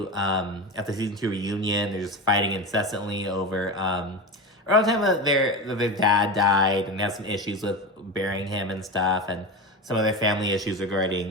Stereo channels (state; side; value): normal; both; correlation 0.23